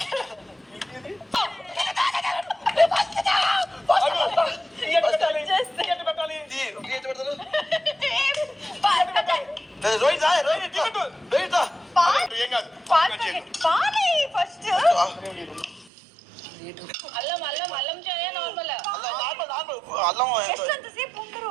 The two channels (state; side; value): drops out; left; at 15.9 s